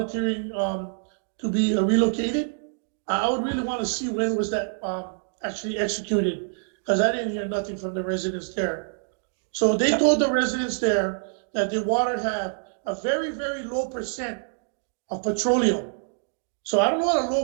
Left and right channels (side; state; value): left; silent; digital silence